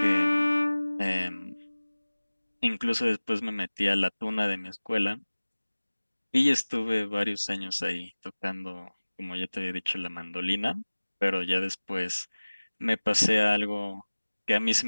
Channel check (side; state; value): both; inverted; correlation -1.00